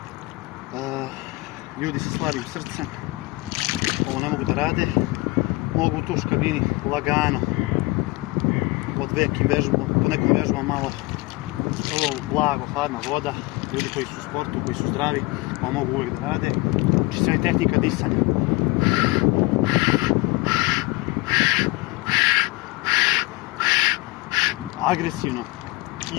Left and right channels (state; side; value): quieter; right; 21.8 dB